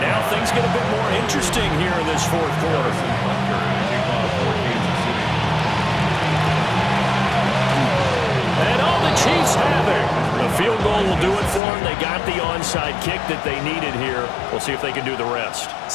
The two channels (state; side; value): drops out; right; at 11.6 s